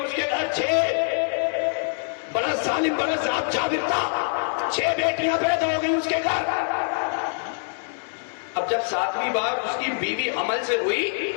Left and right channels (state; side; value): silent; right; 62 dB below the other